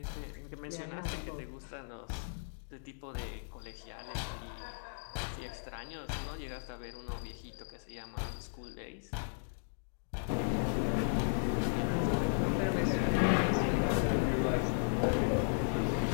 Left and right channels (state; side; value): silent; right; digital silence